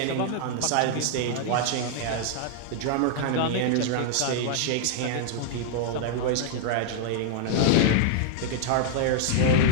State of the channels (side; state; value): both; different; correlation -0.01